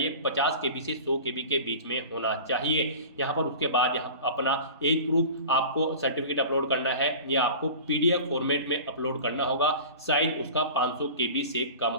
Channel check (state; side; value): inverted; both; correlation -0.37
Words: 50 KB से 100 KB के बीच में होना चाहिए। यहाँ पर उसके बाद यहाँ अपना एज प्रूफ आपको सर्टिफिकेट अपलोड करना है, ये आपको PDF फॉर्मेट में अपलोड करना होगा। साइज उसका 500 KB से